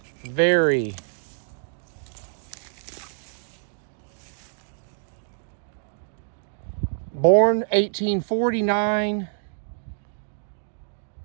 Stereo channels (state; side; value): silent; left; digital silence